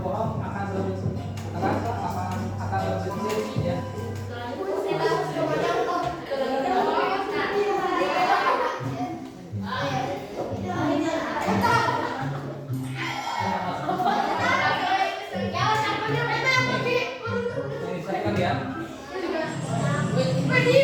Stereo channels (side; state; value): both; identical; correlation 1.00